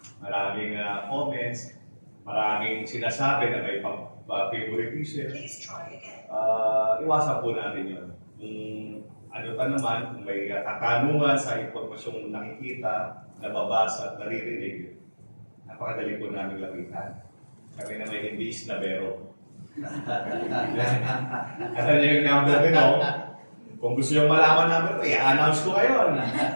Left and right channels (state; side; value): inverted; both; correlation -1.00